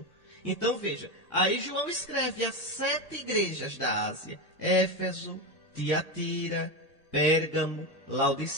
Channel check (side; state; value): right; late; 1.8 ms